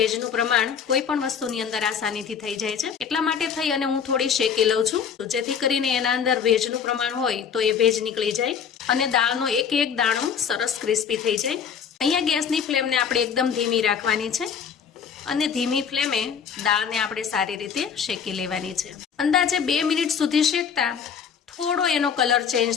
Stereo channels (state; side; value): quieter; right; 7.2 dB